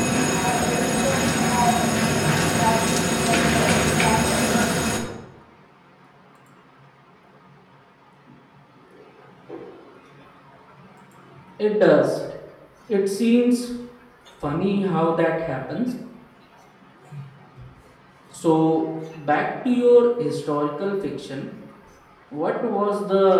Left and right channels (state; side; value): identical; both; correlation 1.00